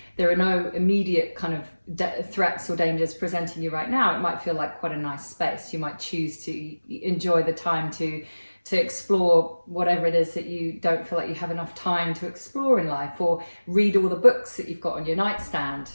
there are no immediate kind of threats or dangers presenting you right now. It might feel like quite a nice space. You might choose to enjoy the time to explore whatever it is that you don't feel like you have enough time to explore in life, or read all the books that you've got on your nightstand,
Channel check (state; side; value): inverted; both; correlation -1.00